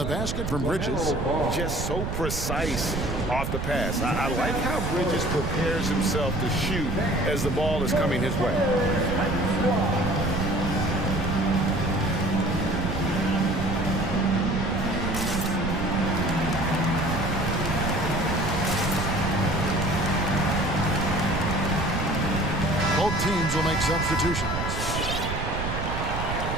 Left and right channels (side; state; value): right; noise; rumble, 3 dB below the sound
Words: basket from Bridges. Just so precise off the pass. I like how Bridges prepares himself to shoot as the ball is coming his way. Both teams will make substitutions.